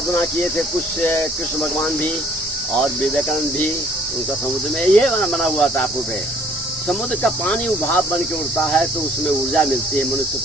किए थे। कुछ कृष्ण भगवान भी और विवेकानंद भी, उनका समुद्र में ये बना हुआ था टापू पे। समुद्र का पानी उभाव बन के उड़ता है तो उसमें ऊर्जा मिलती है मनुष्य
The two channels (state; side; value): normal; both; correlation 0.58